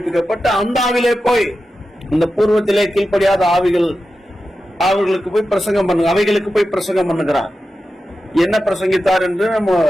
அந்த ஆவிலே போய் இந்த பூர்வத்திலே கீழ்ப்படியாத ஆவிகள் அவர்களுக்கு போய் பிரசங்கம் பண்ணு அவைகளுக்கு போய் பிரசங்கம் பண்ணுகிறார். என்ன பிரசங்கித்தார் என்று நம்ம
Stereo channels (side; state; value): both; normal; correlation 0.92